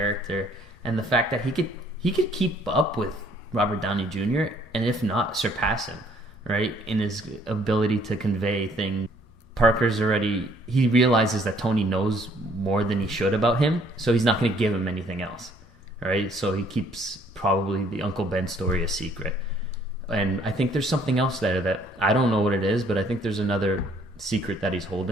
and the fact that he could keep up with Robert Downey Jr. and if not surpass him, right, in his ability to convey things. Parker's he realizes that Tony knows more than he should about him, so he's not going to give him anything else, right? So he keeps probably the Uncle Ben story a secret. And I think there's something else there that I don't know what it is, but I think there's another secret that he's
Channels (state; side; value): normal; both; correlation 0.62